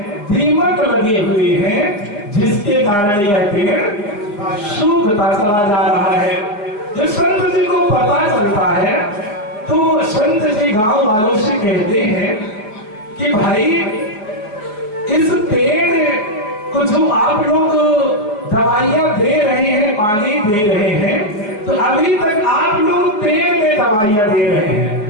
दीमक लगे हुए हैं, जिसके कारण यह पेड़ सूखता चला जा रहा है। जब संत जी को पता चलता है तो संत जी गांव वालों से कहते हैं कि भाई इस पेड़ को जो आप लोग दवाइयां दे रहे हैं, पानी दे रहे हैं, तो अभी तक आप लोग पेड़ में दवाइयां दे रहे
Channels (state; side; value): late; right; 4.9 ms